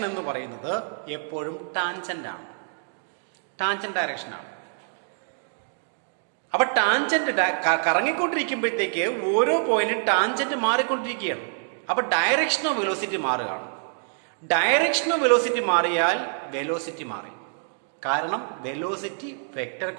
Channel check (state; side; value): silent; left; 59 dB below the other